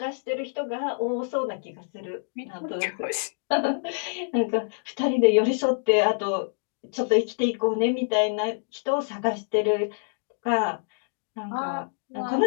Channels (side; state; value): right; silent; digital silence